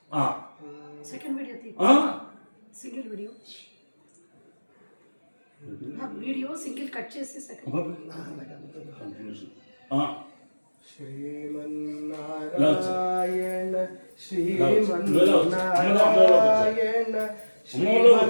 సెకండ్ వీడియో సింగిల్ కట్ చేసి సెకండ్ శ్రీమన్నారాయణ శ్రీమన్నారాయణ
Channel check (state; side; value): inverted; both; correlation -1.00